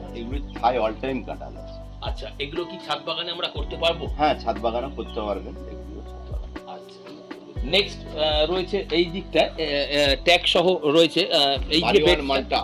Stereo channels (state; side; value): identical; both; correlation 1.00